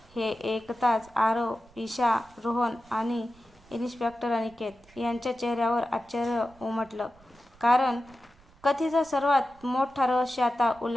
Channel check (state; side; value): noise; right; rumble, 28 dB below the sound